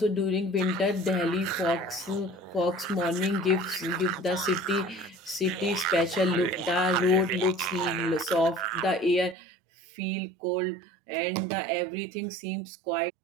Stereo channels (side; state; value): left; drops out; at 9.3 s